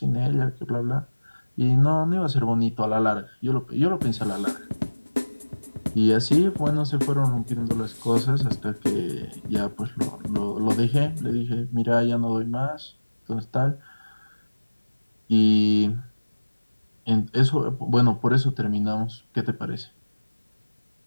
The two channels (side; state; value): both; inverted; correlation -1.00